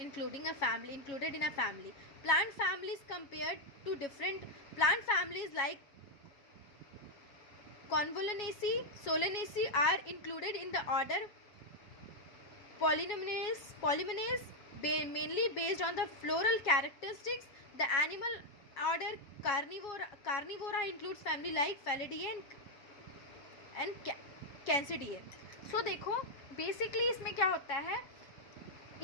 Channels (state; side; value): late; right; 7.2 ms